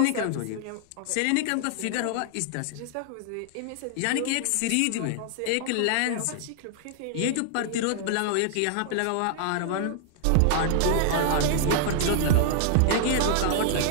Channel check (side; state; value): both; different; correlation -0.01